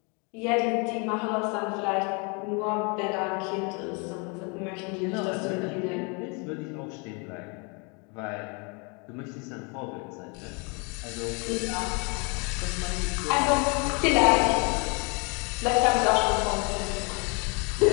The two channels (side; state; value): right; quieter; 33.0 dB